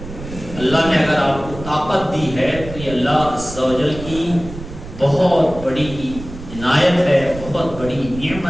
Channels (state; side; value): noise; right; rumble, 12 dB below the sound